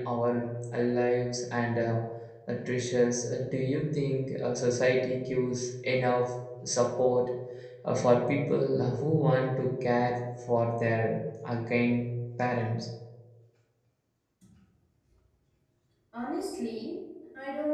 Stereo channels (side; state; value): both; identical; correlation 1.00